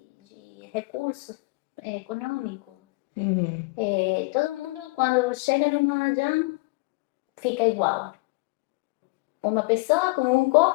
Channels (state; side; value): quieter; right; 26.8 dB